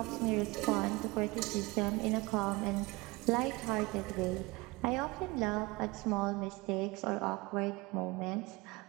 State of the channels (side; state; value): left; quieter; 23.8 dB